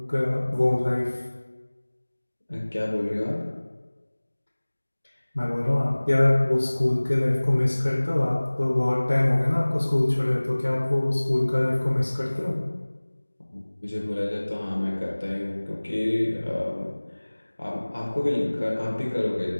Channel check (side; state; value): both; inverted; correlation -1.00